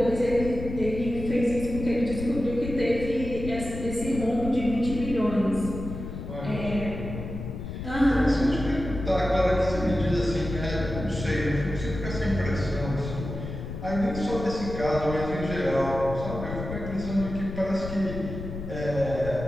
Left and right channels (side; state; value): left; noise; rumble, 7 dB below the sound